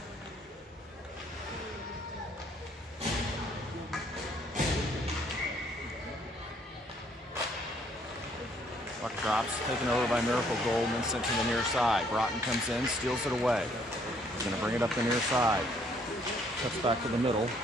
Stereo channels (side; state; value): both; normal; correlation 0.65